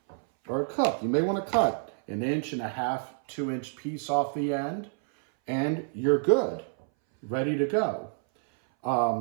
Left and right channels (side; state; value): left; silent; 59 dB below the other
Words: or a cook, you may want to cut 1.5 inch, 2 inch piece off the end, and you're good, ready to go.